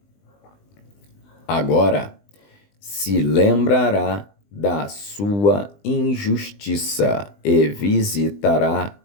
Agora se lembrará da sua injustiça e visitará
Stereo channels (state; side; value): late; right; 20 ms